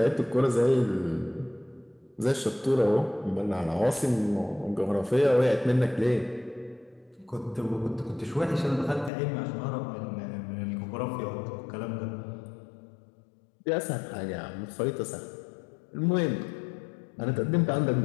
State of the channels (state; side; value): drops out; right; at 9.1 s